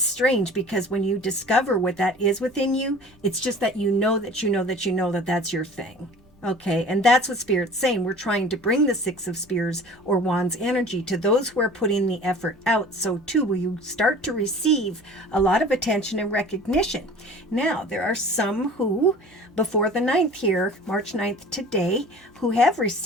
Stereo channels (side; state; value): both; normal; correlation 0.44